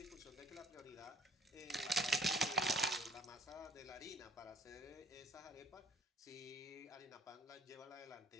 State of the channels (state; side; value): normal; both; correlation 0.56